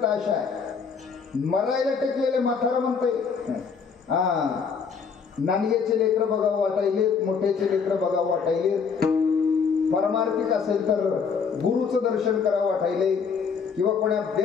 आशा आहे. मरायला टेकलेले म्हातारा म्हणतंय, नानग्याचे लेकर बघावं वाटायले, मोठ्याचे लेकर बघावं वाटायले, परमार्थिक असेल तर गुरुचं दर्शन करावं वाटायले, किंवा कोणा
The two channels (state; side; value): quieter; right; 5.9 dB